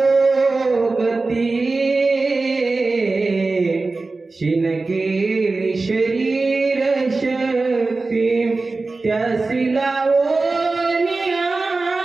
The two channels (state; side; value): quieter; left; 3.6 dB